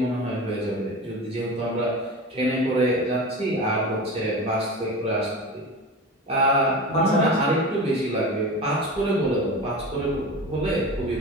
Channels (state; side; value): normal; both; correlation 0.29